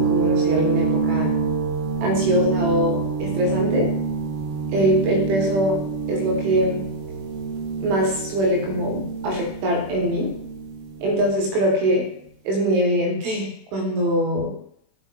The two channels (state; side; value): late; left; 21 ms